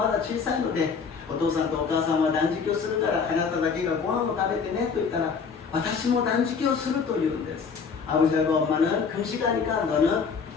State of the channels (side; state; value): right; quieter; 5.7 dB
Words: だ小さいのでお父さんとお母さんは断食をするからあなただけがご飯を食べてねと言ったら私も断食をすると言うんです。 아버지하고 엄마는 금식하니까 너는